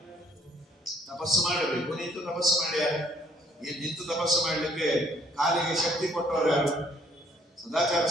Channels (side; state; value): both; normal; correlation 0.64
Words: ತಪಸ್ಸು ಮಾಡಬೇಕು, ನಿಂತು ತಪಸ್ಸು ಮಾಡ್ಯಾರ. ನಿಂತು ತಪಸ್ಸು ಮಾಡಲಿಕ್ಕೆ ಕಾಲಿಗೆ ಶಕ್ತಿ ಕೊಟ್ಟವರು ಯಾರು? ಸದಾಚಾರ